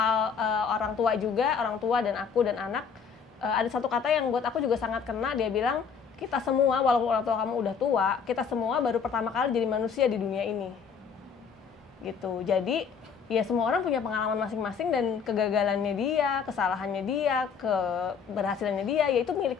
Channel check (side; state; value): right; quieter; 6.4 dB